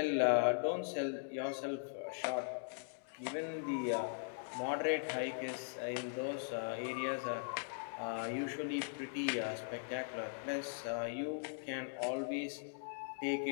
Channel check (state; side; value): silent; right; digital silence